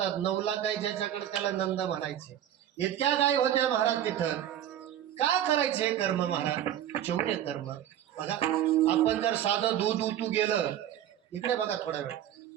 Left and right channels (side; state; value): left; quieter; 11.2 dB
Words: 9 लाख गाय ज्याच्याकडे त्याला नंद म्हणायचे. इतक्या गाय होत्या महाराज तिथं. काय करायचे कर्म महाराज? चौर्य कर्म. बघा, आपण जर साधं दूध उतू गेलं, इकडे बघा थोडा वेळ,